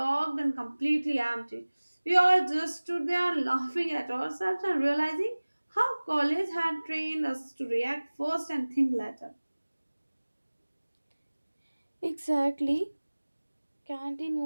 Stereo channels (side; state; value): both; inverted; correlation -1.00